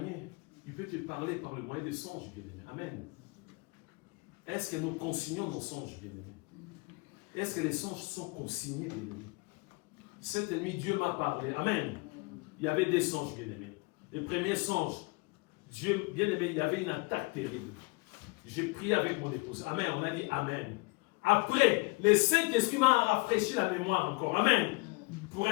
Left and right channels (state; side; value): quieter; right; 27.5 dB